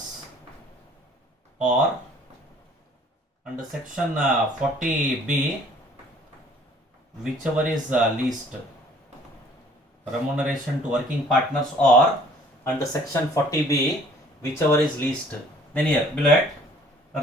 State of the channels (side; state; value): both; normal; correlation 0.55